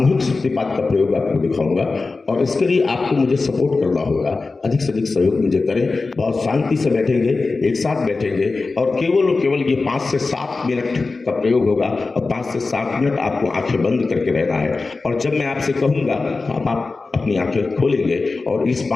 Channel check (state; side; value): quieter; right; 3.9 dB